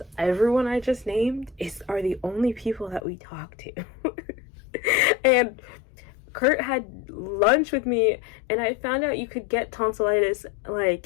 everyone I just named are the only people that we talk to. And Kurt had lunch with me, and I found out you could get tonsillitis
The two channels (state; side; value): drops out; right; at 3.0 s